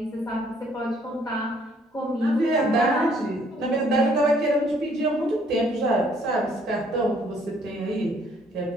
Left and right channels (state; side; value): normal; both; correlation 0.63